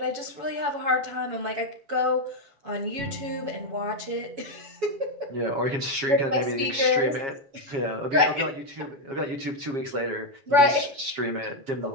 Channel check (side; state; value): left; late; 7.4 ms